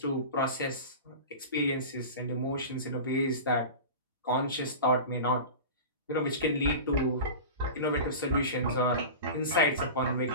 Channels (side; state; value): both; inverted; correlation -0.30